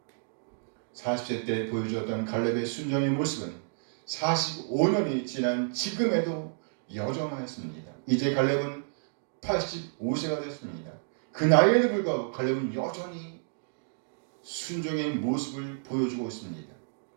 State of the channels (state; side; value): silent; left; digital silence